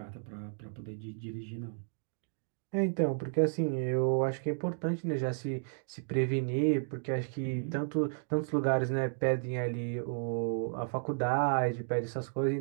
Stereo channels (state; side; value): silent; left; digital silence